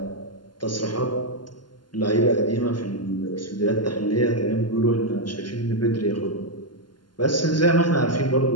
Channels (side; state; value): right; late; 0.71 ms